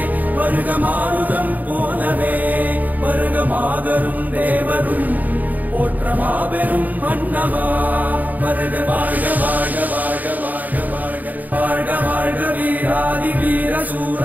வருக மாருதம் போலவே வருக மாதரும் தேவரும் போற்ற மாபெரும் மன்னவா வருக வாழ்க வாழ்க வாழ்க வாழ்க வாழ்க வாழ்க வாழ்க வீராதி வீர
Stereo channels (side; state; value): left; late; 0.081 ms